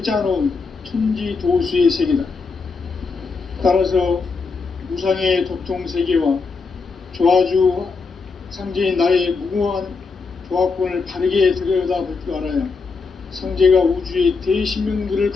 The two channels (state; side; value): quieter; right; 4.6 dB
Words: 짜놓은 천지도수의 세계다. 따라서 무상의 도통세계와 조화주 상제인 나의 무궁한 조화권을 바르게 들여다볼 줄 알아야 상제가 우주의 대신명들을